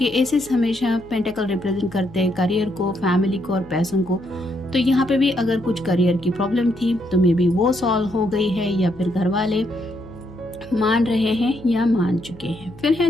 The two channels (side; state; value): left; noise; hum, 22 dB below the sound